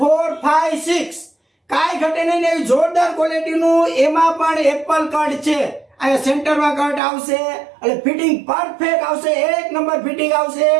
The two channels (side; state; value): left; drops out; at 7.0 s